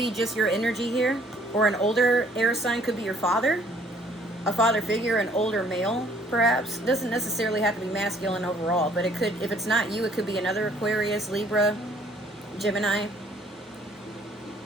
just your energy here. Or an older air sign, could be your father. A father figure, an older male, perhaps. Doesn't necessarily have to be masculine overall, but it could, if it's not you, it could be another Aquarius, Libra, Gemini.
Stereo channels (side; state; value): both; normal; correlation 0.60